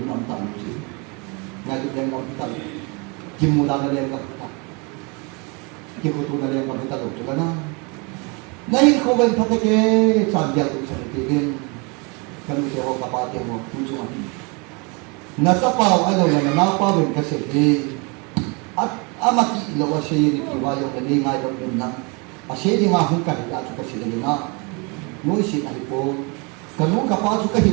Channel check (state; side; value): quieter; left; 30.9 dB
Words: nam ta ni ngai le ka ta kim mula na lên gặp ta, kim cô tu na lên gặp ta được chưa na? Nay không bên thắt cái sản giao tụng sản tiền tiền, cái mình sẽ học cả ba tiền một tu chung anh. Na sa pa ai đâu là na pa bên cái gì? Amati lo wa se ni ki wa yo ni ngai đâu bên na. A se di nga hu ka ya chu ka se ni na. Noi si ai po. Ka nu ka pa chu ka